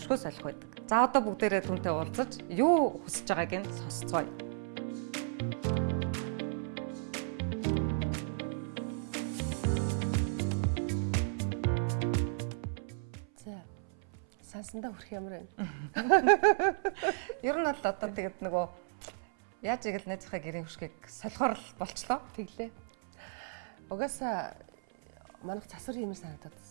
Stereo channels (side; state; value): left; silent; 55 dB below the other